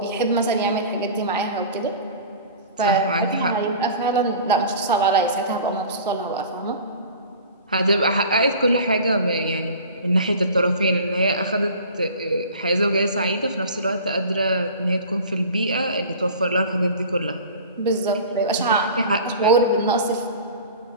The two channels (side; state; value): both; inverted; correlation -0.40